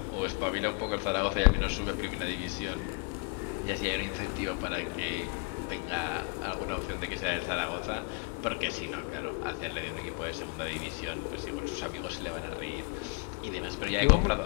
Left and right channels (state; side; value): quieter; right; 33.7 dB